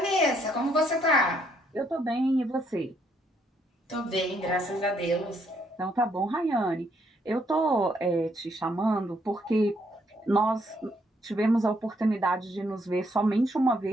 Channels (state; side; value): normal; both; correlation 0.71